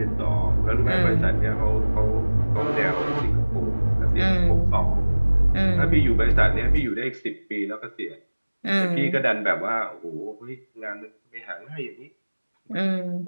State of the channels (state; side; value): inverted; both; correlation -1.00